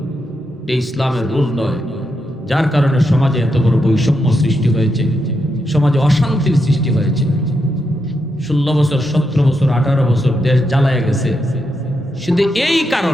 এই ইসলামের রুল নয়। যার কারণে সমাজে এত বড় বৈষম্য সৃষ্টি হয়েছে, সমাজে অশান্তির সৃষ্টি হয়েছে। 16 বছর 17 বছর 18 বছর দেশ জ্বালায় গেছে শুধু এই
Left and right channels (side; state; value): both; normal; correlation 0.83